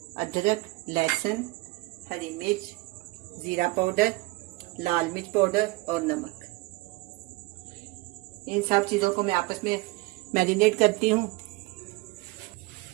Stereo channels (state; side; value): quieter; left; 22.8 dB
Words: अदरक, लहसुन, हरी मिर्च, ज़ीरा पाउडर, लाल मिर्च पाउडर और नमक। इन सब चीज़ों को मैं आपस में मैरिनेट करती हूँ।